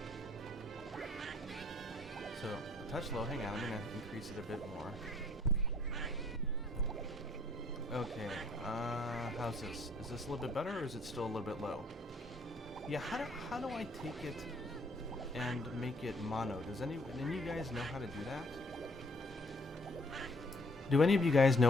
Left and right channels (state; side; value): normal; both; correlation 0.61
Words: So, a touch low. Hang on, I'm going to increase it a bit more. Okay, how's this? Is this a little bit better, or is it still a little bit low? Yeah, how do I take it and make it mono? Does any of you guys know how to do that? Do any of you guys